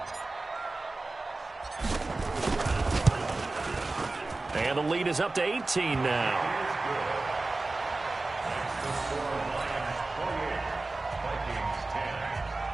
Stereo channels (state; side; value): quieter; left; 3.3 dB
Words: And the lead is up to 18 now.